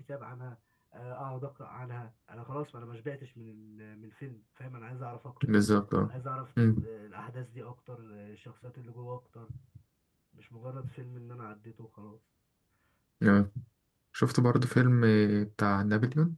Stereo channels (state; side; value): identical; both; correlation 1.00